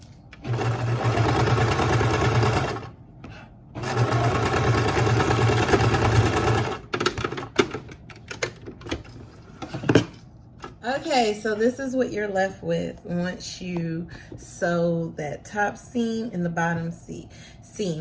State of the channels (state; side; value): identical; both; correlation 1.00